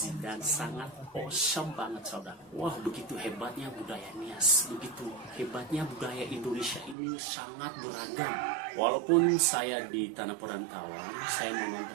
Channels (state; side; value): drops out; left; at 7.0 s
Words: dan sangat awesome banget, saudara. Wah, begitu hebatnya budaya Nias, begitu hebatnya budaya Indonesia ini sangat beragam. Walaupun saya di tanah perantauan, saya